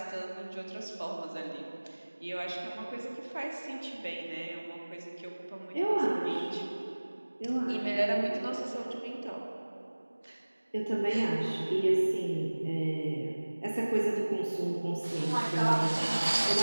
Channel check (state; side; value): inverted; both; correlation -1.00